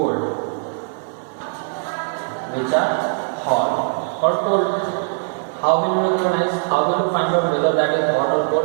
How will you recognize? How will you find out whether that is hot or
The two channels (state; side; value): silent; left; digital silence